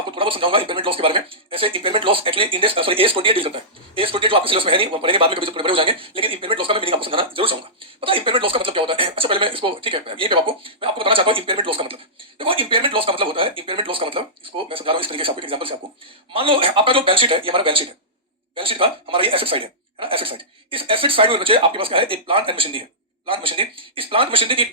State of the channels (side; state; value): both; normal; correlation -0.16